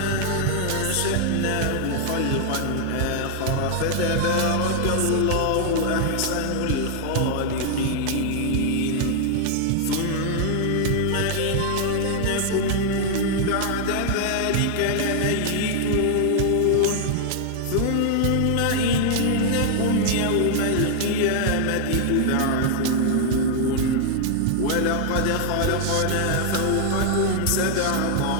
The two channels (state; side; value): different; both; correlation 0.00